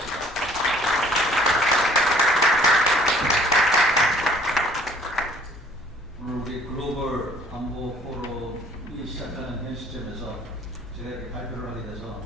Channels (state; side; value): normal; both; correlation 0.56